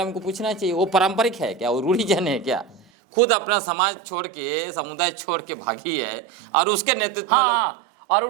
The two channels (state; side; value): drops out; left; at 2.9 s